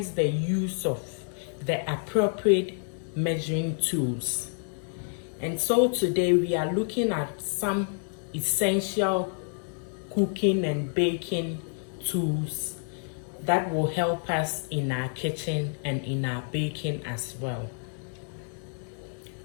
the use of the appropriate measuring tools. And so today we are looking at some essential cooking and baking tools that will help us in our kitchen and in our baking as well.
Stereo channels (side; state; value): right; silent; 59 dB below the other